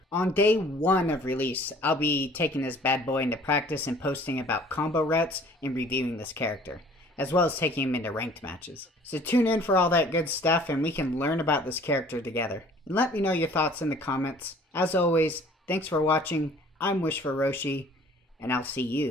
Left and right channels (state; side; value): normal; both; correlation 0.52